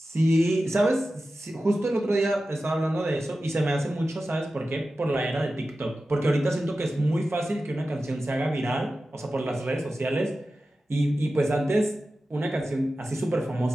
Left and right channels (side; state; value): both; normal; correlation 0.94